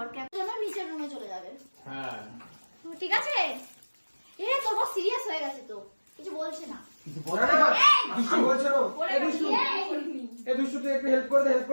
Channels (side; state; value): both; inverted; correlation -1.00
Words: নিচের রুমে চলে যাবে। হ্যাঁ ঠিক আছে। এ তোর বস সিরিয়াস হয়ে গেছে, তো কিছু বলছে না। কিছু বলে না, কিছু বলছে না। এই দুষ্টু তুই একটু হেল্প করে দে